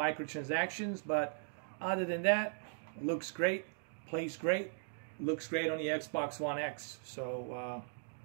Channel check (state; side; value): silent; left; digital silence